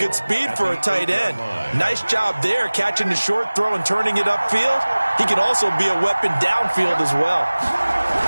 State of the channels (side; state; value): both; inverted; correlation -1.00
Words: speed for a tight end. Nice job there, catching the short throw and turning it upfield. He can also be a weapon downfield as well.